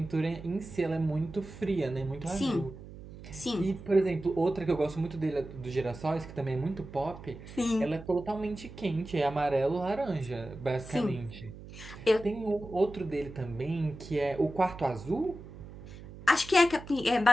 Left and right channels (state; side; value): noise; right; hum, 15 dB below the sound